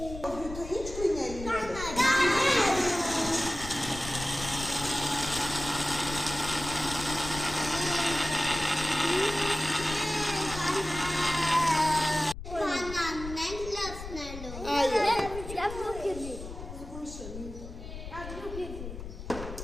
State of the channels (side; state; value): left; noise; rumble, 11 dB below the sound